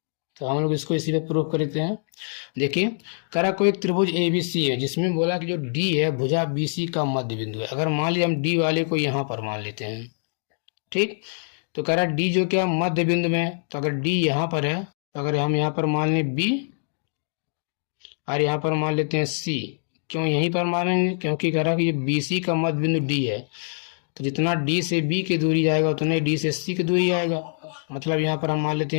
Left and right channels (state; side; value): silent; right; digital silence